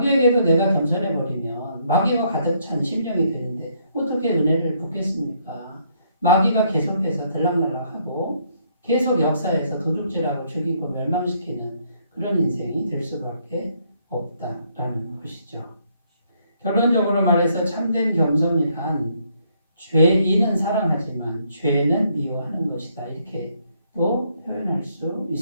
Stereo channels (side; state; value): both; inverted; correlation -0.70